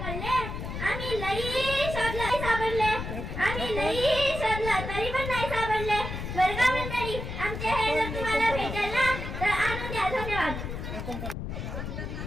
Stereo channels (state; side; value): noise; left; rumble, 6 dB below the sound